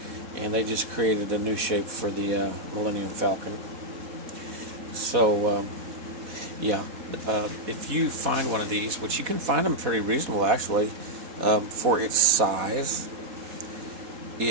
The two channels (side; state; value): left; late; 4.1 ms